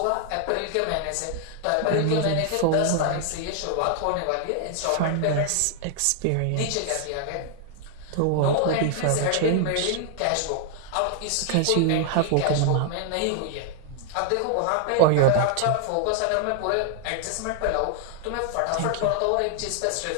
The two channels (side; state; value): both; different; correlation 0.00